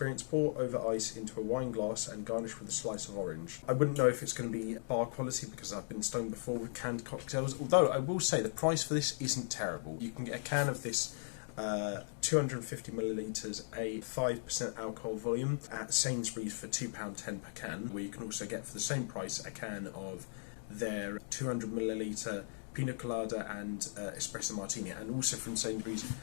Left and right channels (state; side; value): silent; right; digital silence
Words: pour over ice into a wine glass and garnish with a slice of orange. I wouldn't know if it's going to be bar quality because I've been stoned before with canned cocktails, although I will say the price for this isn't terrible. You can get a can of this 250ml, a 5% alcohol volume at Sainsbury's for £2.10 per can, where you can also get for the same price a can of their 200ml pina colada and espresso martini, and also from Sainsbury's